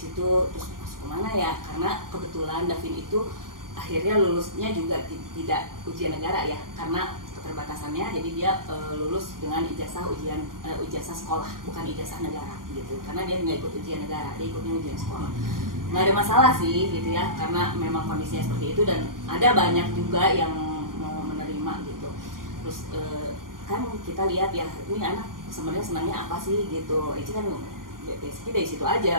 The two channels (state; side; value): late; left; 0.91 ms